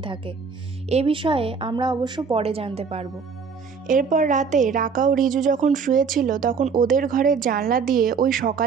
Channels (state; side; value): quieter; left; 5.7 dB